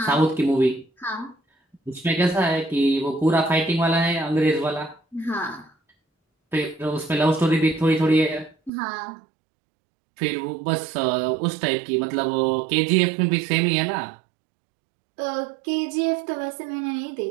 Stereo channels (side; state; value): left; drops out; at 8.7 s